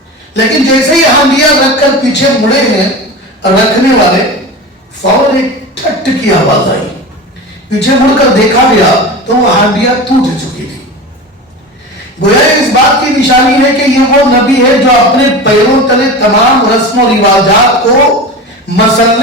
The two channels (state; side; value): normal; both; correlation 0.29